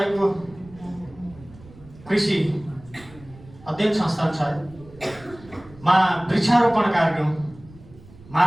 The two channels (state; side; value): noise; right; rumble, 21 dB below the sound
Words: कृषि अध्ययन संस्थानमा वृक्षारोपण कार्यक्रम